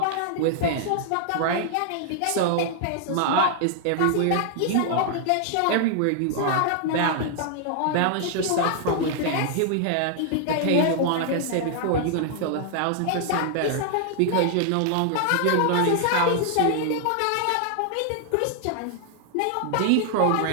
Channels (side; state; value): both; different; correlation 0.00